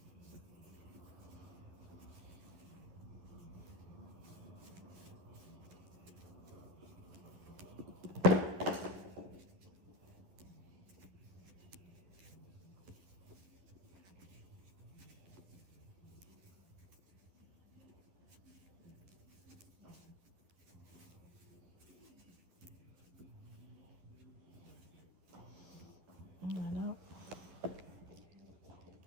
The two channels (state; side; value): late; left; 11 ms